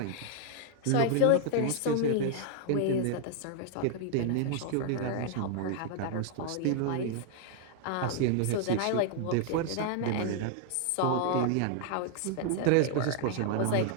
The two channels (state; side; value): different; both; correlation 0.00